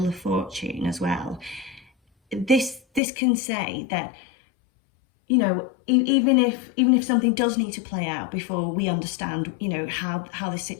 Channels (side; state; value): right; drops out; at 3.0 s